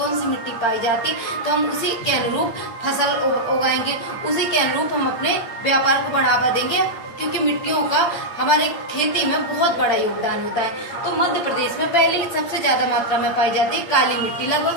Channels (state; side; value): late; right; 8.8 ms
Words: सी मिट्टी पाई जाती है तो हम उसी के अनुरूप फसल उगाएंगे, उसी के अनुरूप हम अपने व्यापार को बढ़ावा देंगे, क्योंकि मिट्टियों का हमारे खेती में बहुत बड़ा योगदान होता है। तो मध्य प्रदेश में पहले ही सबसे ज्यादा मात्रा में पाई जाती है काली मिट्टी, लगभग